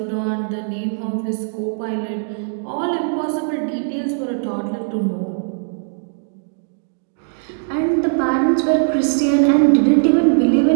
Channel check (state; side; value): silent; left; digital silence